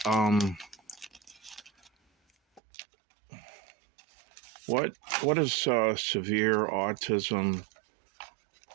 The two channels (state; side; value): drops out; left; at 2.6 s